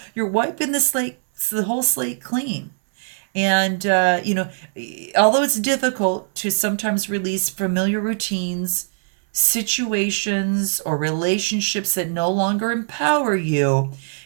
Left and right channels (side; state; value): left; silent; 63 dB below the other